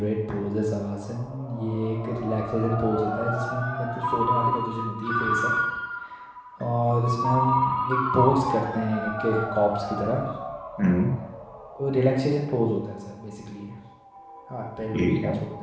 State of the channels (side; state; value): both; identical; correlation 1.00